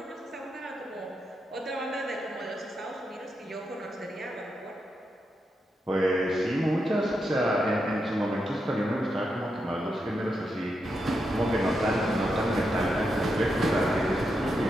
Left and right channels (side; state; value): both; normal; correlation 0.84